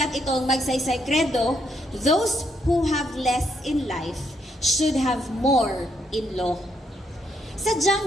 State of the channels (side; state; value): both; normal; correlation 0.75